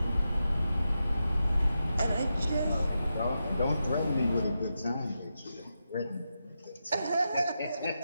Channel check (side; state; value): both; inverted; correlation -0.88